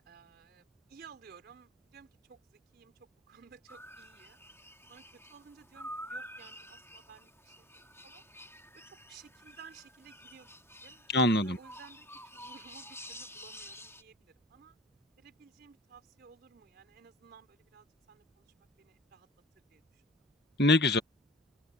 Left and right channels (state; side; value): normal; both; correlation 0.41